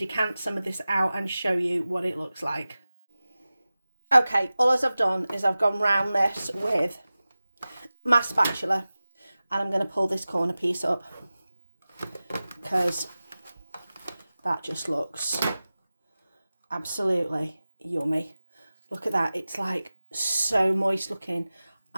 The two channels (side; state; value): both; inverted; correlation -0.96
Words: some of this out and show you what it looks like. Okay, all I've done is I've gone round this with my spatula, and I'm going to pull this corner piece up because that just looks absolutely yummy. Look at that, it's like so moist looking,